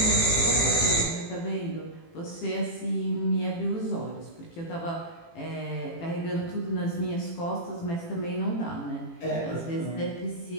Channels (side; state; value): right; late; 18 ms